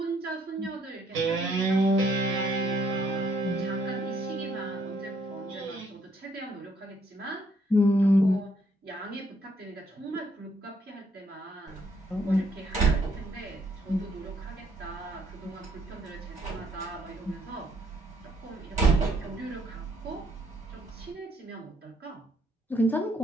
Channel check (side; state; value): both; normal; correlation 0.69